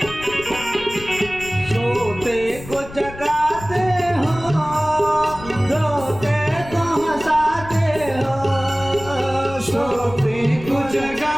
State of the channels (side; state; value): left; noise; rumble, 15 dB below the sound